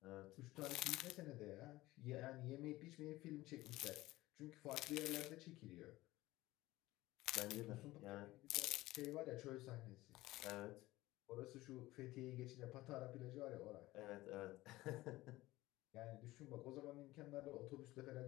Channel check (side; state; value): right; quieter; 18.1 dB